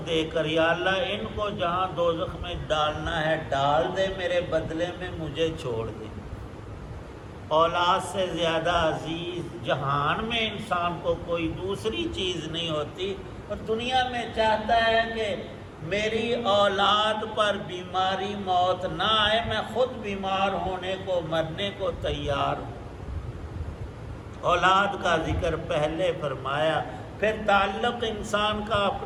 دے کر. یا اللہ ان کو جہاں دوزخ میں ڈالنا ہے ڈال دے، میرے بدلے میں مجھے چھوڑ دے. اولاد سے زیادہ عزیز جہان میں انسان کو کوئی دوسری چیز نہیں ہوتی، اور دنیا میں چاہتا ہے کہ میری اولاد پر بیماری موت نہ آئے، میں خود بیمار ہونے کو مرنے کو تیار ہوں. اولاد کا ذکر پہلے فرمایا. پھر تعلق انسان کا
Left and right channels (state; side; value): identical; both; correlation 1.00